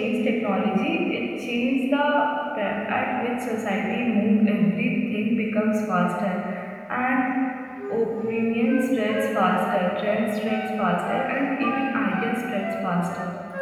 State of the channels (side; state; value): both; identical; correlation 1.00